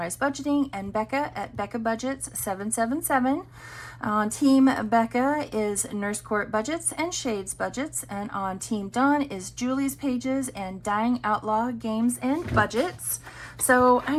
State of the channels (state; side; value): identical; both; correlation 1.00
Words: Budgeting and Becca at Becca Budgets 777. On Team Becca is Nurse Court Budgets and Shades Budgets, and on Team Dawn is Julie's Pages and Dying Outlaw Games and Budgets. So